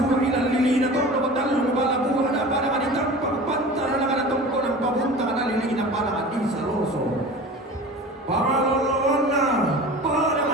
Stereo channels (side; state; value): both; normal; correlation 0.37